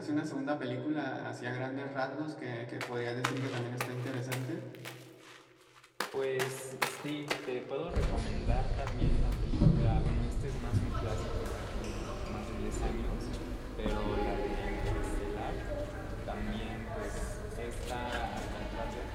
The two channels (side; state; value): both; identical; correlation 1.00